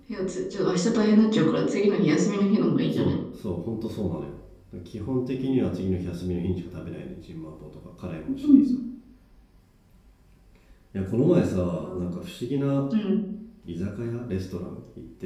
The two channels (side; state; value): both; identical; correlation 1.00